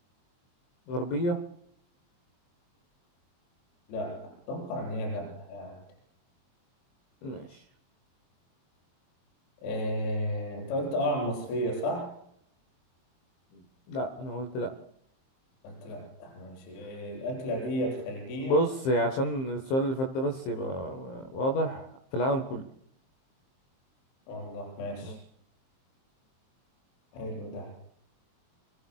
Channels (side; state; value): right; late; 23 ms